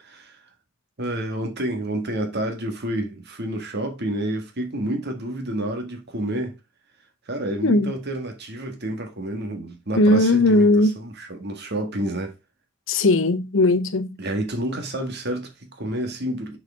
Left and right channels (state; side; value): normal; both; correlation 0.39